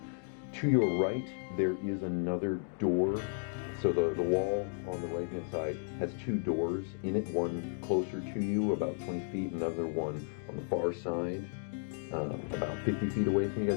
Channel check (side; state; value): right; silent; digital silence